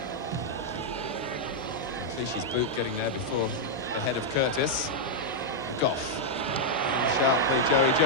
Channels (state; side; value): normal; both; correlation -0.02